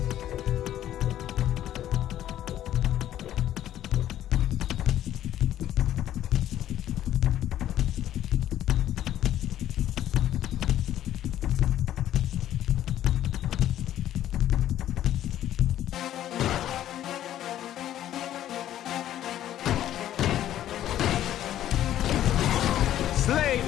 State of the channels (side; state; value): right; quieter; 12.1 dB